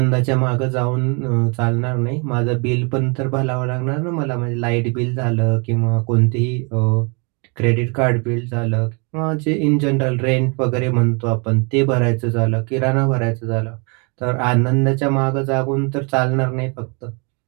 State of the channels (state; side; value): quieter; left; 33.4 dB